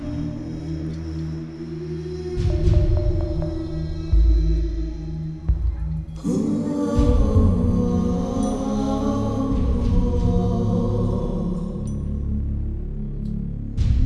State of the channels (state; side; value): identical; both; correlation 1.00